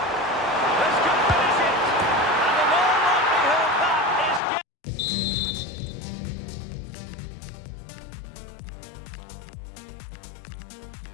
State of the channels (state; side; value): drops out; right; at 4.4 s